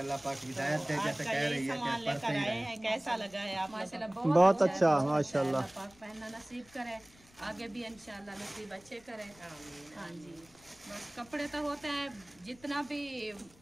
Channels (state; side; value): noise; left; rumble, 27 dB below the sound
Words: पाक हिदायत दे, जैसे कह रही है कि पढ़ते ही रहें। कैसा लगा है आप? माशाल्लाह बहुत अच्छा, माशाल्लाह। पाक पहनना नसीब करे, आगे भी इंशाल्लाह नसीब अच्छे करें। हाँ जी। बस कपड़े तो होते हैं, जितना भी